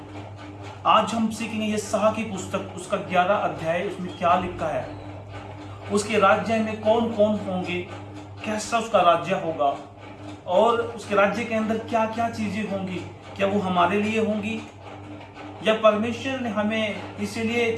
आज हम सीखेंगे यशायाह की पुस्तक, उसका 11 अध्याय, उसमें क्या लिखा है, उसके राज्य में कौन कौन होंगे, कैसा उसका राज्य होगा और उसके राज्य के अंदर क्या क्या चीजें होंगी। क्या वो हमारे लिए होंगी या परमेश्वर ने हमें इसीलिए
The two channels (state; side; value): identical; both; correlation 1.00